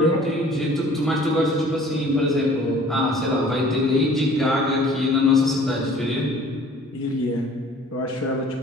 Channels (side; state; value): both; normal; correlation 0.51